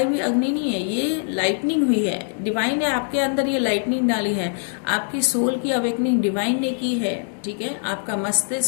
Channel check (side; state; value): right; silent; 62 dB below the other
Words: हुई अग्नि नहीं है, ये लाइटनिंग हुई है, डिवाइन है आपके अंदर, ये लाइटनिंग डाली है। आपकी सोल की अवेकनिंग डिवाइन ने की है, ठीक है। आपका